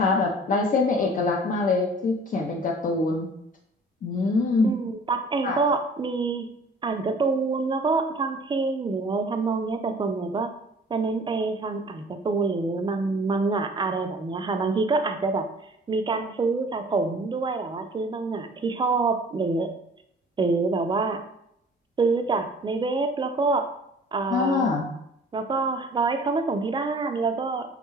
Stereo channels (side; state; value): both; normal; correlation 0.49